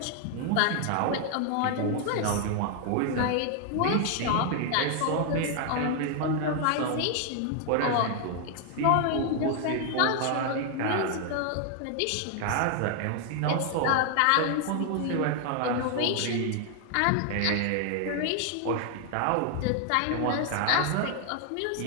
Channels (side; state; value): both; different; correlation 0.00